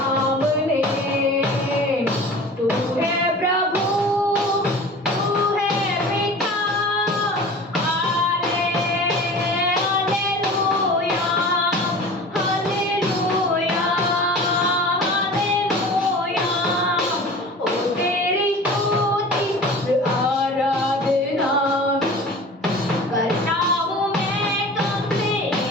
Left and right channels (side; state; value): both; normal; correlation 0.39